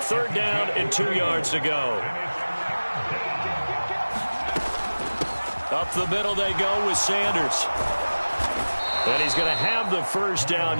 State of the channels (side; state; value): both; inverted; correlation -1.00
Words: 3rd down and 2 yards to go. Up the middle they go with Sanders. And he's going to have the first